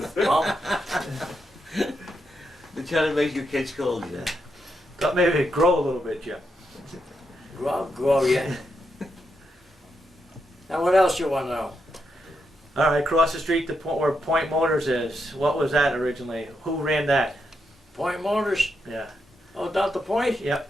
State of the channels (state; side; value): normal; both; correlation 0.82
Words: Well, They're trying to make your kids cold, yeah. Thought maybe it'd grow a little bit, Jim. grow yet. Now what else you wanna know? All right, across the street, where Point Motors is. What was that originally? Who ran that? Point Motors? Yeah. Oh, down the Point? Yep.